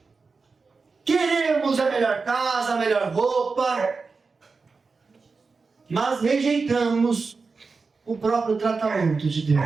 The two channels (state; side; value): quieter; left; 4.5 dB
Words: Queremos a melhor casa, a melhor roupa. Mas rejeitamos o próprio tratamento de